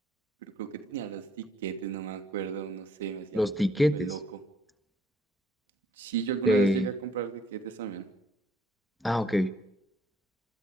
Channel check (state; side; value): normal; both; correlation 0.66